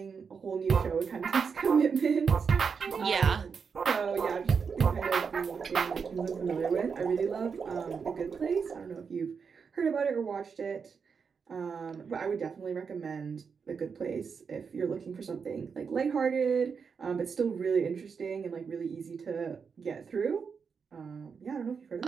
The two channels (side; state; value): left; quieter; 5.9 dB